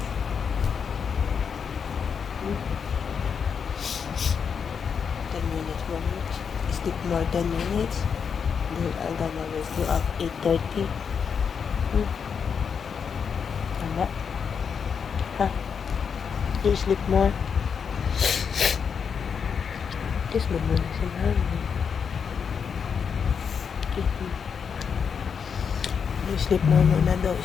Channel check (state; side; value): quieter; right; 6.6 dB